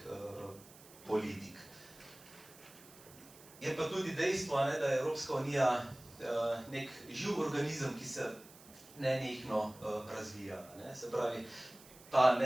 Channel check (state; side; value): noise; right; hiss, 21 dB below the sound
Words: politik. Je pa tudi dejstvo, da je Evropska unija nek živ organizem, ki se nenehno razvija. Se pravi, ta